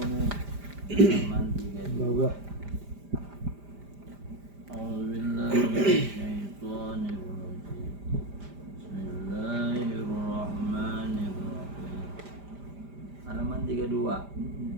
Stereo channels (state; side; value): late; left; 5.0 ms